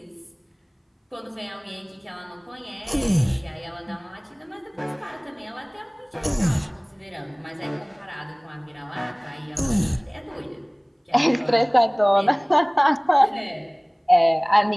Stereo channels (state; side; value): identical; both; correlation 1.00